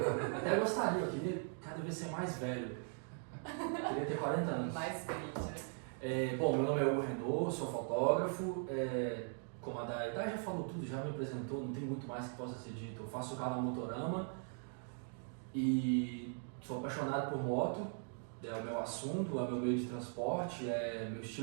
Até eu gostaria, eu queria cada vez ser mais velho. Eu queria ter 40 anos. Mais crítica. Bom, meu nome é Hugo Renault, sou fotógrafo. Como a Dai já falou tudo, já me apresentou, não tem muito mais que possa ser dito. Eu faço o canal Motorama e sou apaixonado por moto. É o meu assunto, é o meu meio de transporte, é meu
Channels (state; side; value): silent; left; 51 dB below the other